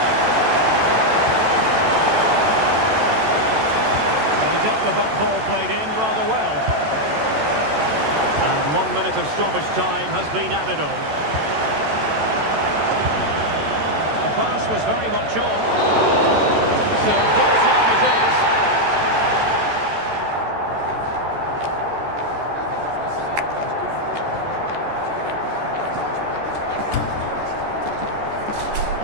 Well, he dealt with that ball played in rather well. And 1 minute of stoppage time has been added on. The pass was very much on. So,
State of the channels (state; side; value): late; left; 14 ms